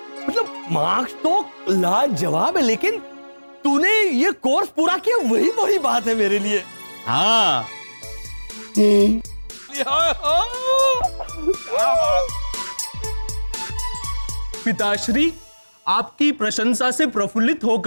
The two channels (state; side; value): inverted; both; correlation -1.00